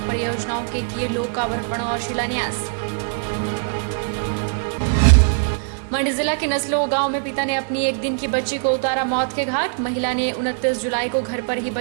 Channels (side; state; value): left; silent; 55 dB below the other